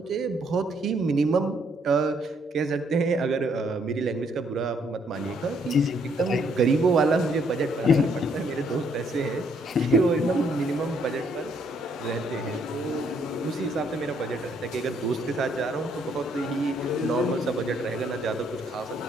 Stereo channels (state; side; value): normal; both; correlation 0.69